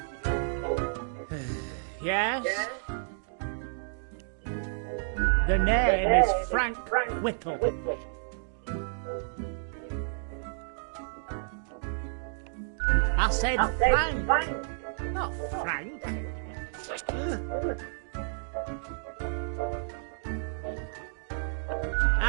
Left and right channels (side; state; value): left; silent; digital silence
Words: Yes? The name is Frank Whittle. I said Frank, not Frank.